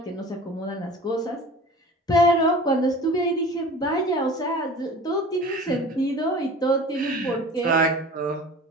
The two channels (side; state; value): both; normal; correlation 0.40